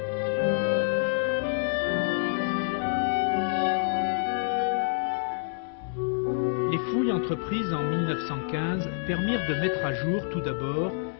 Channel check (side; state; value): right; silent; 60 dB below the other